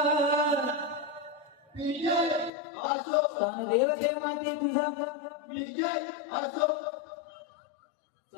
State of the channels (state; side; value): drops out; right; at 2.5 s